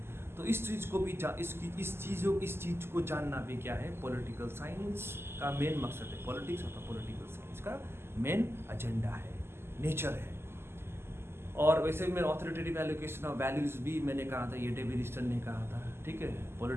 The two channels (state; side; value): late; left; 0.12 ms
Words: तो इस चीज़ को भी इस चीज़ को जानना भी क्या है, पॉलिटिकल साइंस का मेन मकसद है। पॉलिटिक्स और पॉलिटिकल साइंस का मेन एजेंडा है, नेचर है। और वैसे भी मैं ऑथोरिटेटिव एलोकेशन ऑफ वैल्यूज़ भी मैंने कहा था, ये डेविड ईस्टन ने कहा था, ठीक है।